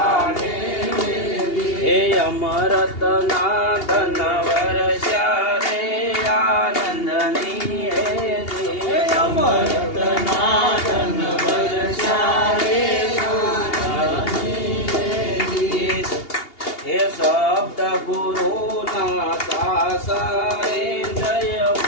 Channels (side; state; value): right; late; 2.8 ms